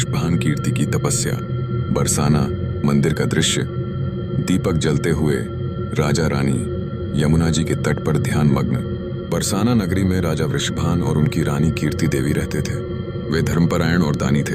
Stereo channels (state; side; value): identical; both; correlation 1.00